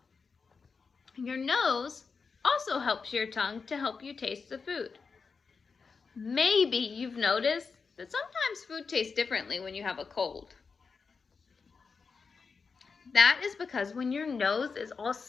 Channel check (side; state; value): right; quieter; 5.1 dB